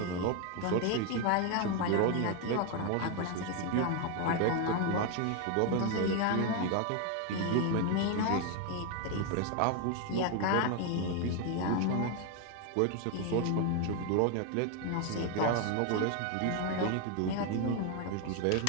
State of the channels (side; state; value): both; different; correlation 0.01